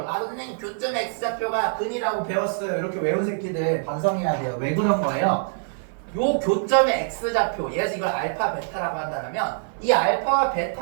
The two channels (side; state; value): left; silent; 55 dB below the other